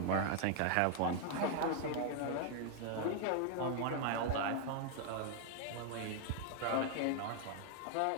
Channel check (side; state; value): both; different; correlation 0.00